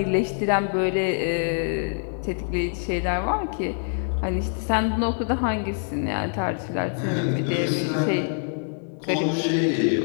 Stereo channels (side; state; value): right; silent; digital silence